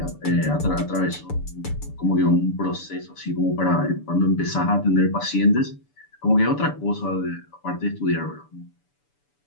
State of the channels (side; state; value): right; late; 6.9 ms